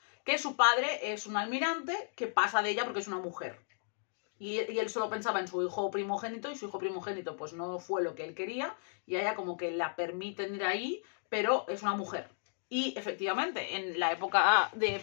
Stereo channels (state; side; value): silent; right; digital silence